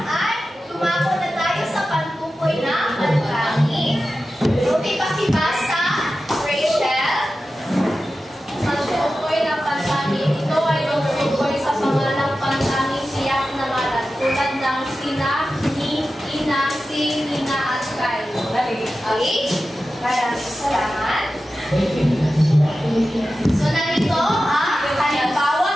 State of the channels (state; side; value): normal; both; correlation 0.93